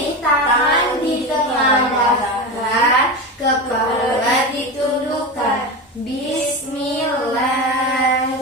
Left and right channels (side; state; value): both; normal; correlation 0.22